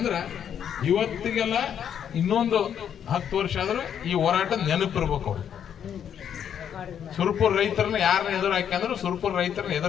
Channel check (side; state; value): right; quieter; 8.8 dB